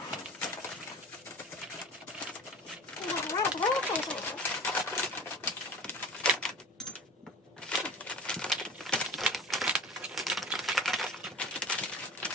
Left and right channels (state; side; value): normal; both; correlation 0.37